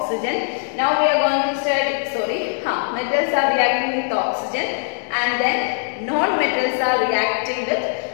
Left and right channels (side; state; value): right; silent; digital silence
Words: Now we are going to study, metals are reacting with oxygen and then non-metals are reacting with